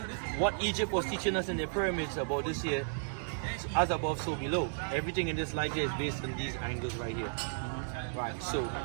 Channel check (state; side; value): silent; left; 55 dB below the other